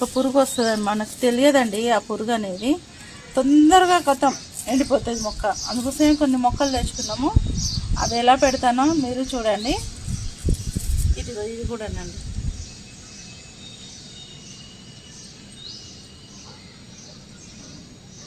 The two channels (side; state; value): both; identical; correlation 1.00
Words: పురుగు వస్తుంది, మనకు తెలియదండి ఆ పురుగు అనేది. తొందరగా కొత్తం ఎండిపోతుంది మొక్క. అందుకోసమే కొన్ని మొక్కలు తెచ్చుకున్నాము. అది ఎలా పెడతానో మీరు చూడండి. ఇది కూడానండి.